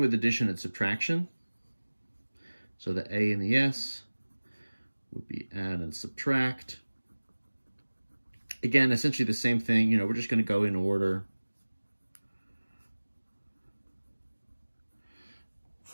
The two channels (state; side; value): inverted; both; correlation -1.00